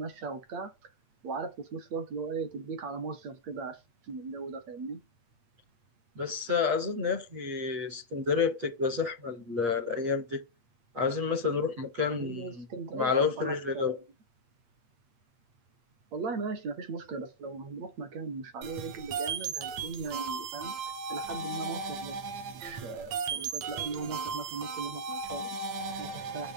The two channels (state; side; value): late; left; 8.6 ms